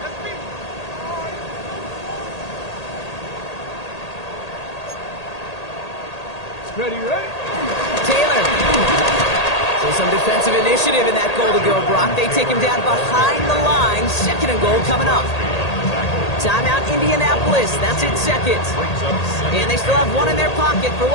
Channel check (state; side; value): late; right; 1.8 ms